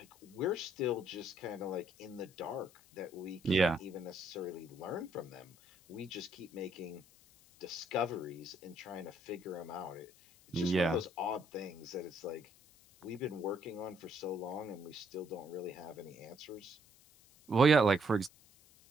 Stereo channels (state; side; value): noise; left; hiss, 26 dB below the sound